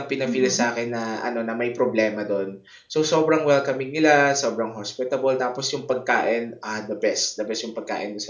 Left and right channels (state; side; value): identical; both; correlation 1.00